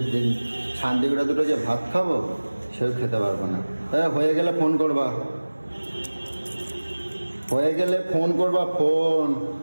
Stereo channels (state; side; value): inverted; both; correlation -1.00